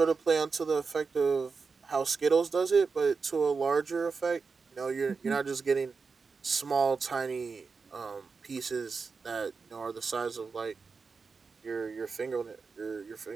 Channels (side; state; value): left; quieter; 4.9 dB